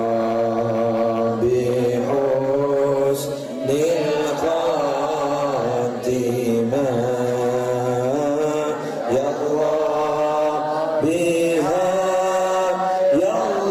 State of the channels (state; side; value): identical; both; correlation 1.00